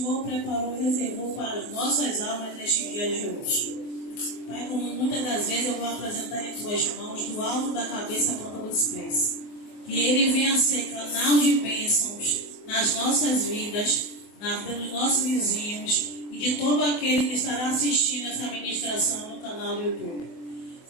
preparou e reservou para as nossas almas neste dia de hoje. Pai, como muitas das vezes eu vou apresentar em tuas mãos, do alto da cabeça à ponta dos pés, que Ele venha ser canal de bênçãos nas nossas vidas, na vida dos nossos vizinhos e de todo aquele que estará assistindo essa ministração no canal do YouTube.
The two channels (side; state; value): right; late; 24 ms